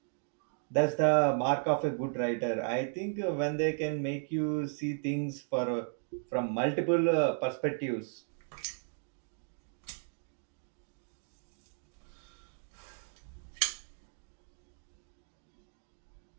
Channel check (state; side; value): silent; left; digital silence